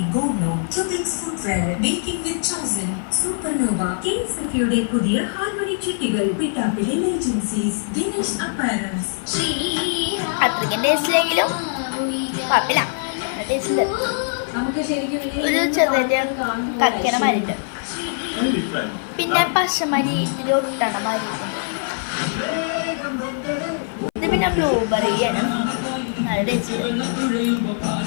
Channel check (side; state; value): right; silent; 60 dB below the other